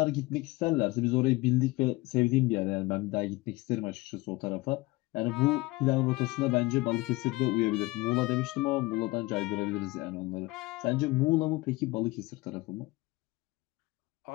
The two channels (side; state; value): right; quieter; 21.6 dB